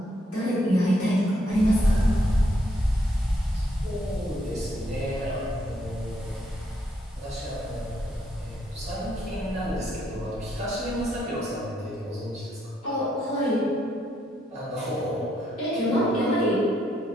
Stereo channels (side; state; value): both; normal; correlation 0.74